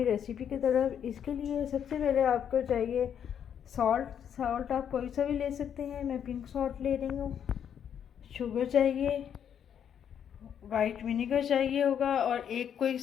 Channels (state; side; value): quieter; right; 8.7 dB